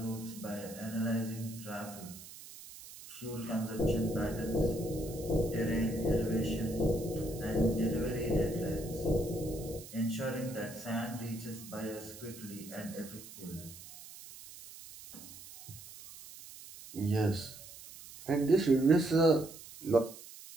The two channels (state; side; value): noise; right; hiss, 15 dB below the sound